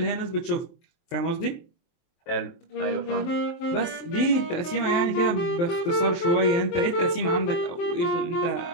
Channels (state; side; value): late; right; 23 ms